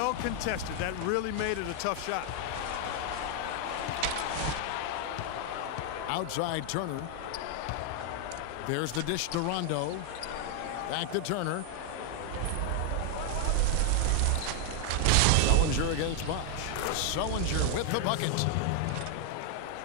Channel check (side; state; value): both; different; correlation 0.00